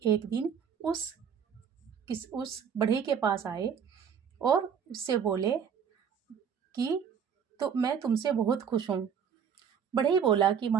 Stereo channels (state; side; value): quieter; left; 7.4 dB